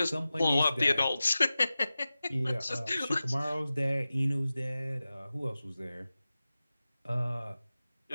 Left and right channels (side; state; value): both; inverted; correlation -0.95